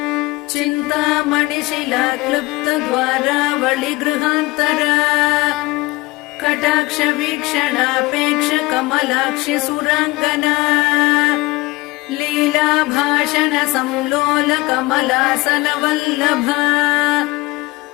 चिन्तामणिशिला क्लुप्त द्वारावळि गृहान्तरा कटाक्ष वीक्षणापेक्ष कमलाक्षि सुराङ्गना लीला भाषण संलोल कमलासन वल्लभा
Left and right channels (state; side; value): quieter; right; 22.0 dB